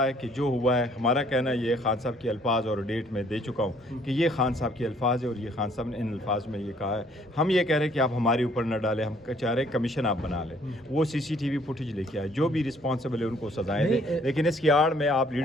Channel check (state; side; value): normal; both; correlation 0.62